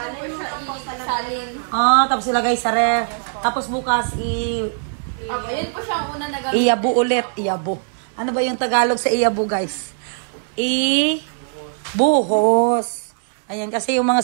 po siya, isalin. Ah, tapos ilagay sa ref. Tapos bukas Okay, yun po siya ang una na gawin. iyabu ulit. Iyabu. Ano ba yung Tagalog sa iyabu, guys? Buhos. Ayan, kasi yung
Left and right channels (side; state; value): left; silent; digital silence